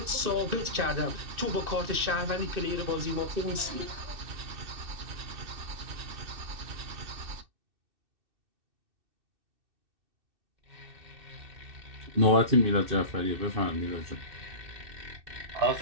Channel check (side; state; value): left; late; 2.6 ms